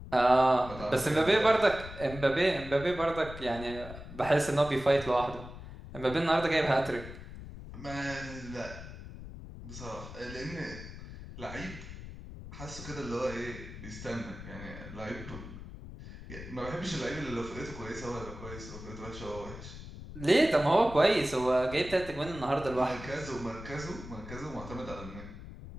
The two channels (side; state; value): left; noise; rumble, 12 dB below the sound